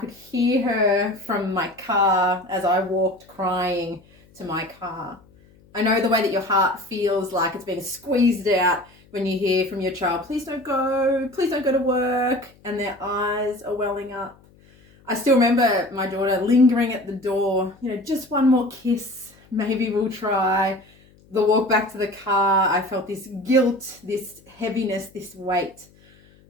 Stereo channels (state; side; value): noise; left; hum, 29 dB below the sound